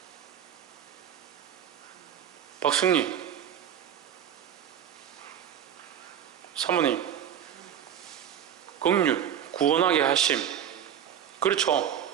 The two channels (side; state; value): left; quieter; 9.3 dB